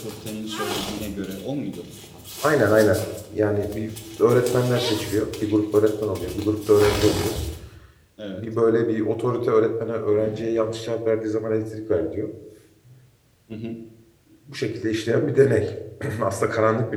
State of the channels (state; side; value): identical; both; correlation 1.00